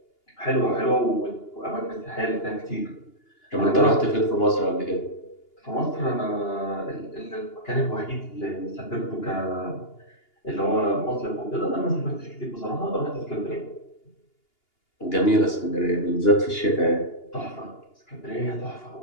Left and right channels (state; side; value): late; right; 2.8 ms